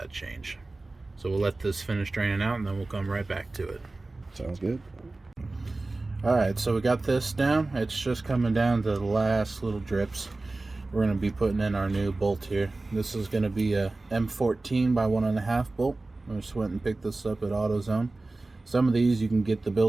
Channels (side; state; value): left; quieter; 3.2 dB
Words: change. So we'll let this finish draining out, and then we'll come right back to it. Sounds good. Alright, so we got this down. It's just coming down to the last little drips. We're going to be putting in our new bolt here. This is going to be a M14 by 1.5 bolt. I just went and picked this up at AutoZone. Some of these you can get the